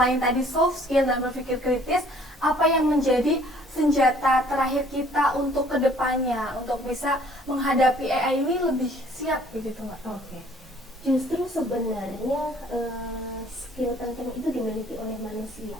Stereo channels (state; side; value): normal; both; correlation 0.57